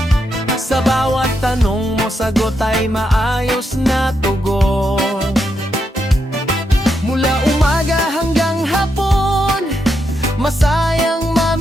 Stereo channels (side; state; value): both; normal; correlation 0.82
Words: Sa bawat tanong mo, sagot ay maayos na tugon. Mula umaga hanggang hapon, masayang